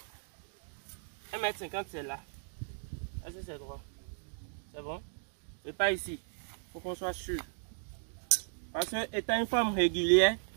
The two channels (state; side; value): silent; left; digital silence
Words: 1,50 m c'est là. Est-ce que c'est droit? C'est bon? C'est pas ici. Il faut qu'on soit sûr. Parce que étant une forme régulière,